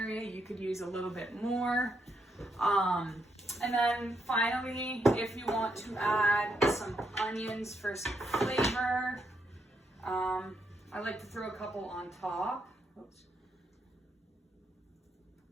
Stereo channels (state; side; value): normal; both; correlation 0.78